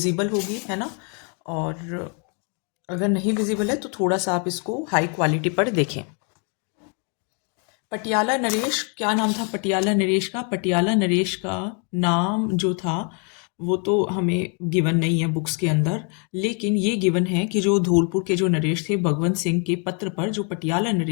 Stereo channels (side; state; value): right; quieter; 38.3 dB